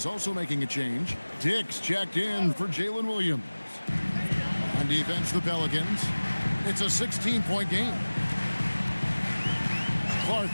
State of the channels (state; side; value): inverted; both; correlation -1.00